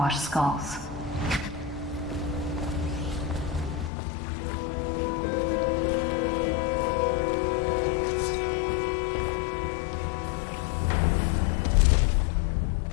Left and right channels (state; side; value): drops out; right; at 3.9 s